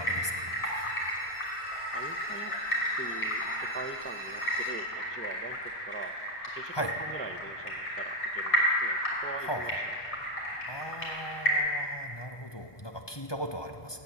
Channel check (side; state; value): right; late; 1.2 ms